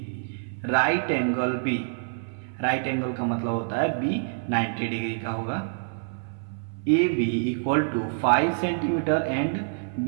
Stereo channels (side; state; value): left; silent; 60 dB below the other